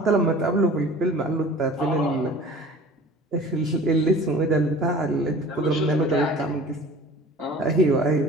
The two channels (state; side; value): normal; both; correlation 0.43